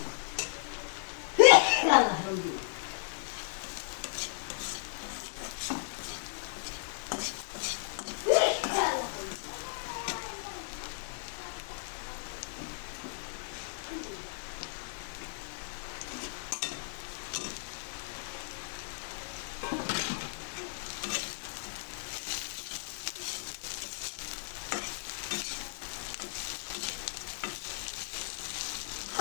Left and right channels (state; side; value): silent; right; digital silence